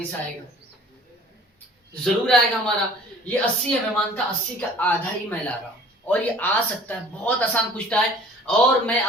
आएगा, जरूर आएगा हमारा। ये 80 है, मैं मानता 80 का आधा ही मैं ला रहा हूं, और ये आ सकता है। बहुत आसान पूछता है, और मैं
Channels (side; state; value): both; normal; correlation 0.49